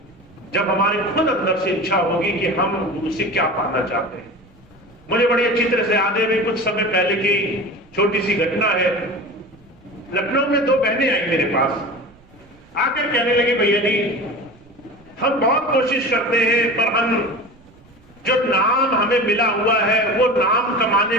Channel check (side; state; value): right; noise; rumble, 28 dB below the sound